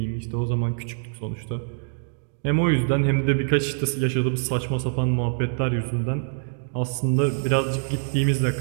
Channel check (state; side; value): silent; left; digital silence